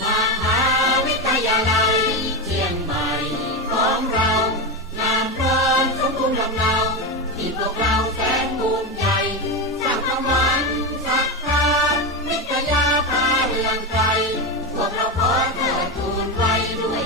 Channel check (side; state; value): both; normal; correlation 0.15